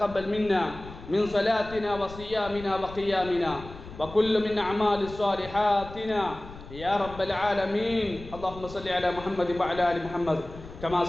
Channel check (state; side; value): noise; left; rumble, 15 dB below the sound